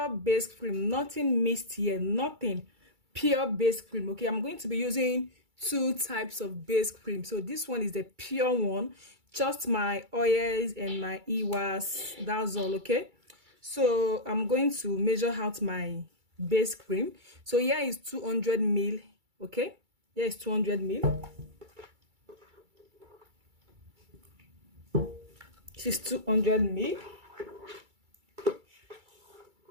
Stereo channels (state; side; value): late; left; 2.3 ms